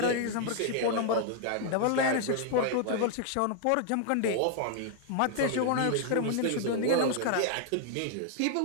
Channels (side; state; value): both; different; correlation 0.00